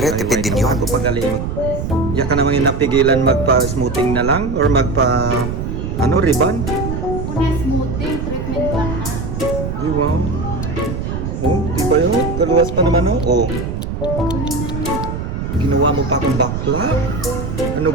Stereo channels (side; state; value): right; noise; rumble, 4 dB below the sound